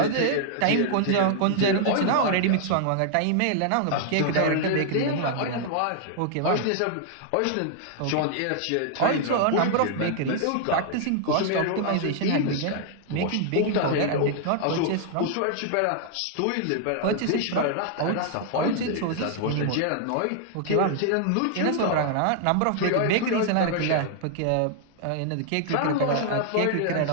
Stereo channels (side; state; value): both; different; correlation -0.01